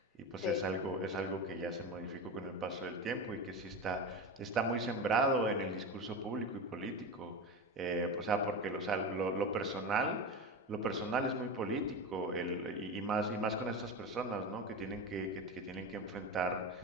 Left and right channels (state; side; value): normal; both; correlation 0.23